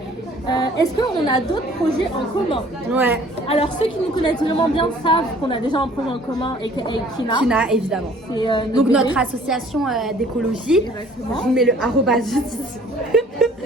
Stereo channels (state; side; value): normal; both; correlation 0.54